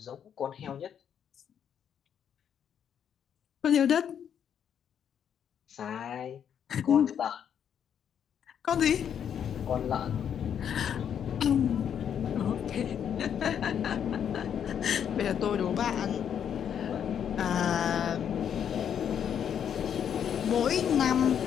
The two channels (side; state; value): right; quieter; 8.6 dB